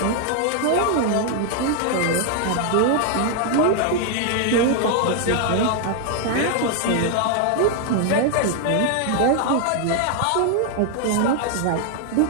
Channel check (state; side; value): different; both; correlation 0.00